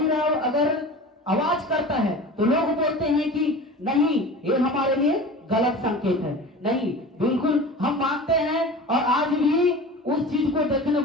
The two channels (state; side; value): normal; both; correlation 0.36